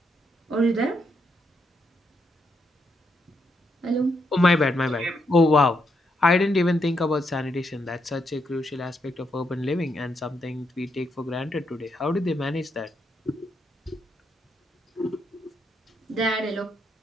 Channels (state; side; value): normal; both; correlation 0.79